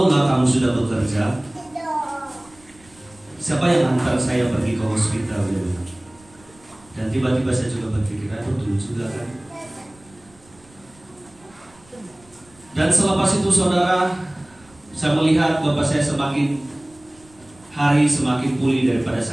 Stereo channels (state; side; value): noise; right; rumble, 28 dB below the sound